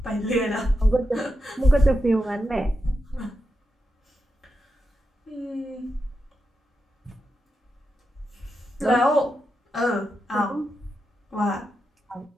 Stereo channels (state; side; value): normal; both; correlation 0.87